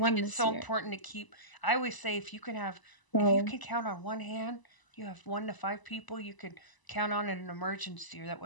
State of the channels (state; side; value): late; right; 1.0 ms